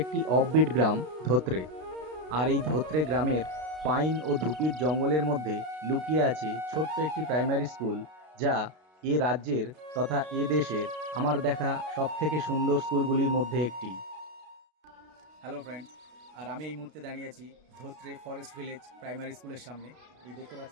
অফবিট গ্রাম ধোত্রে। আর এই ধোত্রে গ্রামের পাইন ও ধুপির জঙ্গলের মধ্যে লুকিয়ে আছে ছোট্ট একটি প্রাইমারি স্কুল, যা এ রাজ্যের তথা এ দেশের আমার দেখা সবথেকে সুন্দর স্কুলগুলির মধ্যে একটি। হ্যালো ফ্রেন্ডস, আর আমি এই মুহূর্তে দাঁড়িয়ে আছি ধোত্রে ফরেস্ট ভিলেজ প্রাইমারি স্কুলের সামনে। এই দেখতে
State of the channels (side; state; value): left; late; 32 ms